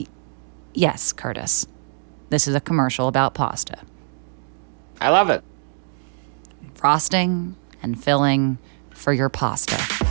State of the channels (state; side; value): silent; left; digital silence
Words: Yes, Curtis. This is a commercial about pasta. I love it. Frosting and filling for your pasta.